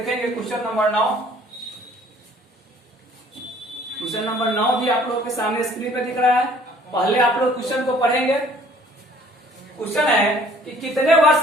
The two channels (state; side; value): normal; both; correlation 0.56